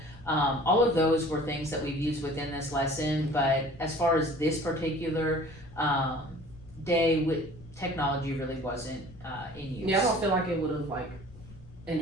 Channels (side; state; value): left; noise; rumble, 21 dB below the sound